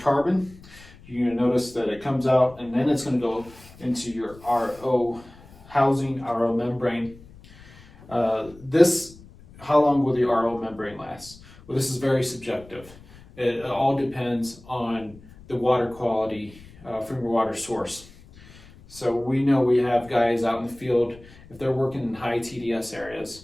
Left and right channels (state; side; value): noise; left; rumble, 22 dB below the sound